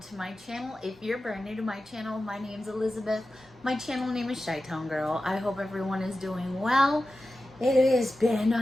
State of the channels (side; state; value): both; normal; correlation 0.93